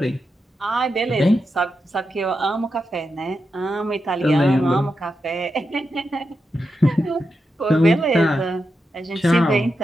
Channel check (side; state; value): both; normal; correlation 0.87